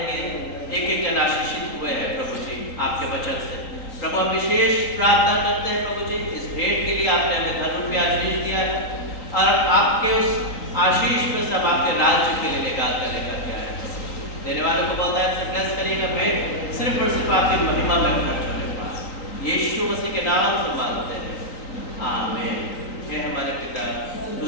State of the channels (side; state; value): right; late; 3.9 ms